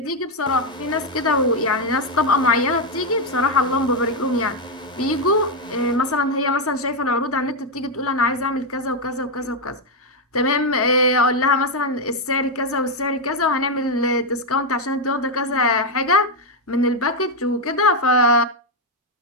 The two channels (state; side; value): normal; both; correlation 0.03